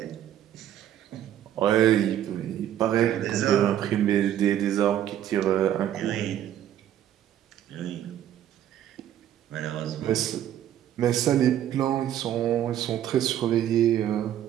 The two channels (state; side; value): quieter; left; 11.2 dB